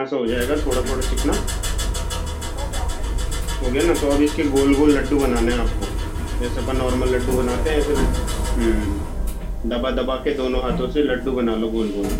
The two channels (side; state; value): both; identical; correlation 1.00